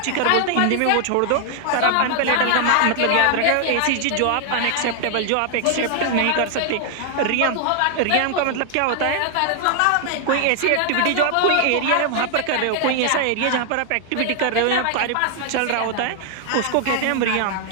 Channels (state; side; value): different; both; correlation 0.00